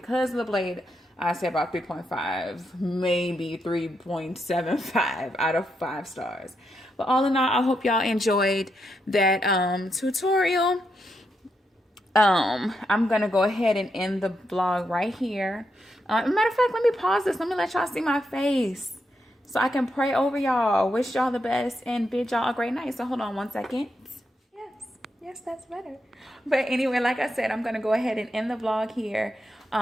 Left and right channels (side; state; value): both; normal; correlation 0.82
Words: of the blade, I say about 3.5, maybe 3.75 out of 5 stars. But all in all, I hope y'all enjoyed that tutorial. I'm going to go ahead and end the vlog right here. Matter of fact, let me pause this. Let me let y'all see my face so I can pray over y'all. Wish y'all the best and bid y'all a great night. So hold on one second. Yes, that's better. But anyway, like I said, I'm going to go ahead and end the vlog here.